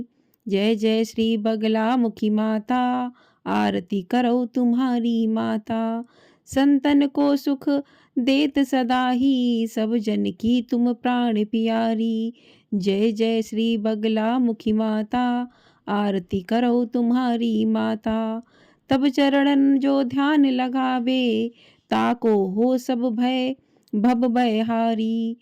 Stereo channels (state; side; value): identical; both; correlation 1.00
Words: जय जय श्री बगलामुखी माता, आरती करो तुम्हारी माता। संतन को सुख देत सदा ही, सब जन की तुम प्राण प्यारी। जय जय श्री बगलामुखी माता, आरती करो तुम्हारी माता। तब चरणन जो ध्यान लगावे, ताको हो सब भय भव भयहारी।